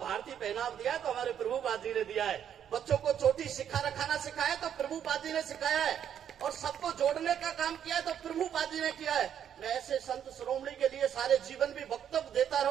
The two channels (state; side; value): quieter; left; 9.2 dB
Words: पहनाव दिया है तो हमारे प्रभुपाद जी ने दिया है। बच्चों को चोटी रखाना सिखाया तो प्रभुपाद जी ने सिखाया है। और सबको जोड़ने का काम किया है तो प्रभुपाद जी ने किया है। मैं ऐसे संत शिरोमणि के लिए सारे जीवन भी वक्तव्य देता